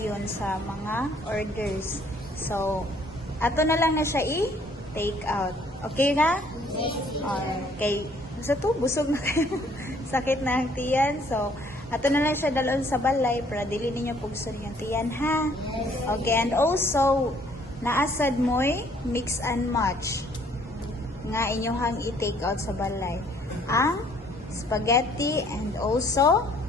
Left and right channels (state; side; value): normal; both; correlation 0.61